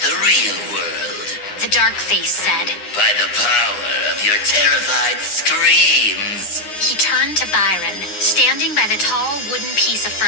real world. The dark face said. By the power of your terrified screams. He turned to Byron, standing by the tall wooden piece of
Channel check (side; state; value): right; late; 9.7 ms